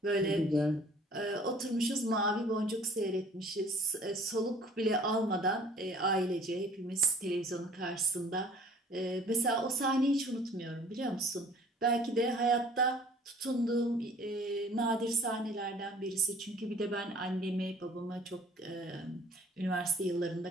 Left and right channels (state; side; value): normal; both; correlation 0.52